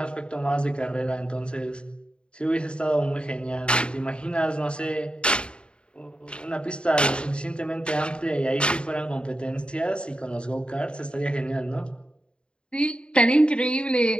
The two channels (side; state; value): right; late; 0.053 ms